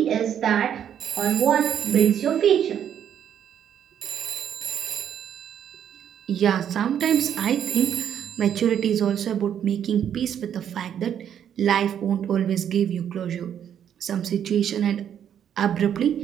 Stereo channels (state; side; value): quieter; left; 9.2 dB